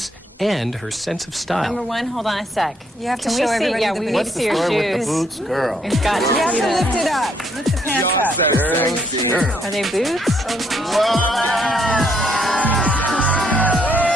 and her sense of style. Number one, hold on a sec. You have to Can show we see? everybody Yeah, the we boots. need to see your What's the story with shoes. the boots, girl? We've got to You have see to them. lift it up. Lift the pants up. Are they boots?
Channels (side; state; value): both; normal; correlation 0.71